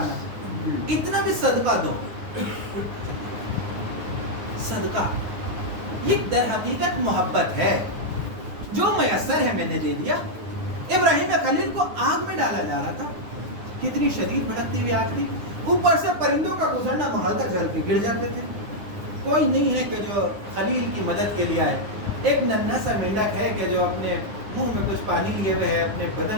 اتنا بھی صدقہ دو۔ صدقہ یہ در حقیقت محبت ہے، جو میسر ہے میں نے دے دیا۔ ابراہیم خلیل کو آگ میں ڈالا جا رہا تھا، کتنی شدید بھڑکتی ہوئی آگ تھی، اوپر سے پرندوں کا گزرنا محال تک جل کے گر جاتے تھے، کوئی نہیں ہے کہ جو خلیل کی مدد کے لیے آئے۔ ایک ننھا سا مینڈک ہے کہ جو اپنے منہ میں کچھ پانی لیے ہوئے ہے، اپنے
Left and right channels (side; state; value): left; late; 9.7 ms